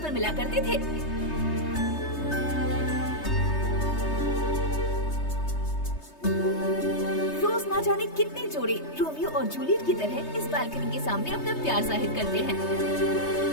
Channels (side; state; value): right; late; 3.3 ms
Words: मिला करते थे। रोज ना जाने कितने जोड़े रोमियो और जूलियट की तरह इस बालकनी के सामने अपना प्यार जाहिर करते हैं।